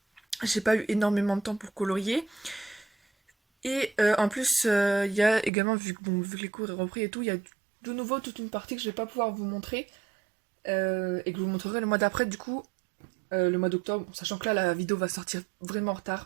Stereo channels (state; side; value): drops out; left; at 5.5 s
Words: j'ai pas eu énormément de temps pour colorier. Et en plus il y a également, vu que les cours ont repris et tout, il y a de nouveau toute une partie que je vais pas pouvoir vous montrer. Et que je vous montrerai le mois d'après du coup. Le mois d'octobre, sachant que là la vidéo va sortir vraiment en